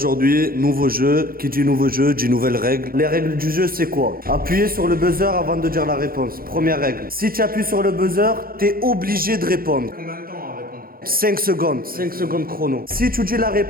nouveau jeu. Qui dit nouveau jeu, dit nouvelles règles. Les règles du jeu, c'est quoi? Appuyez sur le buzzer avant de dire la réponse. Première règle. Si tu appuies sur le buzzer, t'es obligé de répondre. Combien de temps à répondre? 5 secondes. 5 secondes chrono. Si tu dis la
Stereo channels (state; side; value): late; left; 0.42 ms